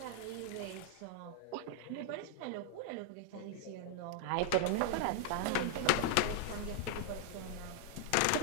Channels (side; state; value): both; different; correlation 0.00